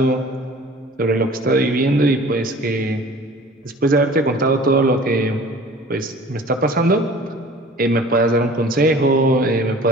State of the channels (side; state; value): both; normal; correlation 0.46